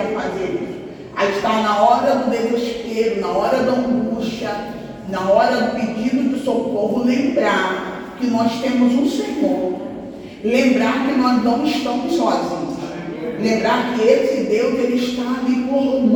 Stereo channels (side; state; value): both; identical; correlation 1.00